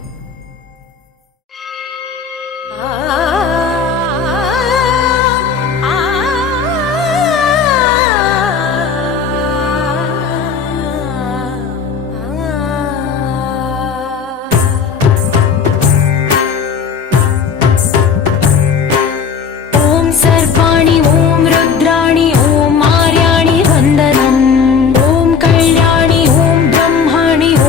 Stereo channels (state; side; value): quieter; right; 6.1 dB